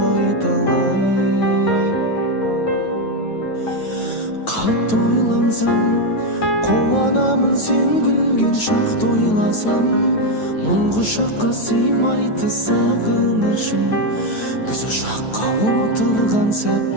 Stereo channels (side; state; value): right; late; 9.2 ms